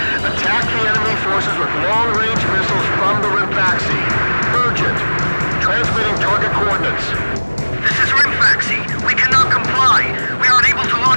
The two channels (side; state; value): both; inverted; correlation -1.00